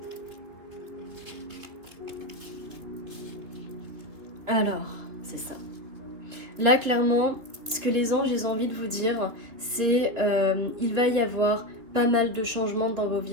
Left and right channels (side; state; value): left; late; 3.2 ms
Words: Alors, c'est ça. Là, clairement, ce que les anges ils ont envie de vous dire, c'est il va y avoir pas mal de changements dans vos